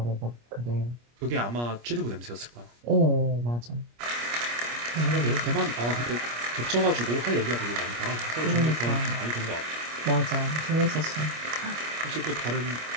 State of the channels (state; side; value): late; left; 25 ms